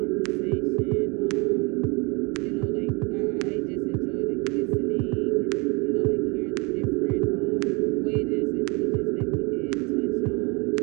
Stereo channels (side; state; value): left; quieter; 29.2 dB